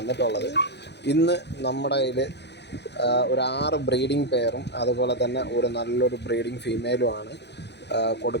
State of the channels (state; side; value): late; right; 0.50 ms